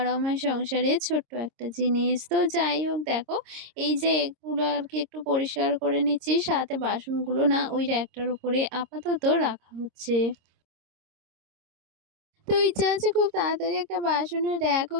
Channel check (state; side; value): late; left; 26 ms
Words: আমার সংসারের ছোট্ট একটা জিনিস। তো যাই হোক, দেখো এই যে এগুলো আর কি একটু পরিষ্কার করে নিচ্ছি, সাথে বাসনগুলো না ওই র্যাকটার উপরে আপাতত রাখা হচ্ছে। তো ইচ্ছা আছে খুব তাড়াতাড়ি একটা বাসনের র‍্যাকও